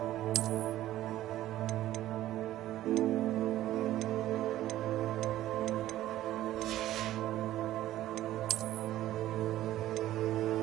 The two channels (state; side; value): quieter; left; 14.1 dB